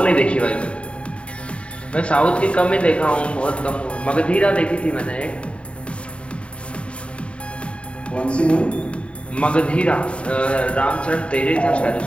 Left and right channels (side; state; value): right; late; 0.060 ms